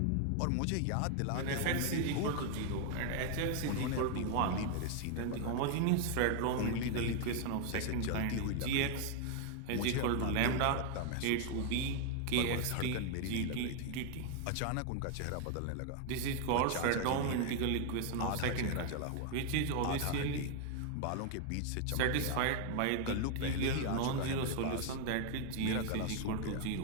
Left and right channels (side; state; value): both; different; correlation 0.00